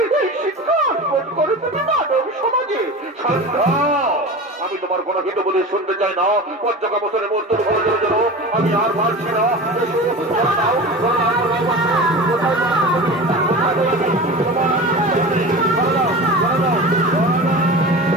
এই শিক্ষা অর্পণ করে তুমি মানব সমাজে। আমি তোমার কোনো হিত বলে শুনতে চাই না। পঞ্চকাম বছরে মোর তোর ভালো জন্য আমি আর পারছি না।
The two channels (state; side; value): normal; both; correlation 0.31